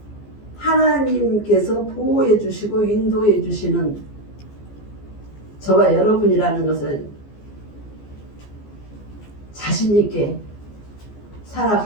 하나님께서 보호해 주시고 인도해 주시는 저와 여러분이라는 것을 자신 있게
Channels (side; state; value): right; late; 14 ms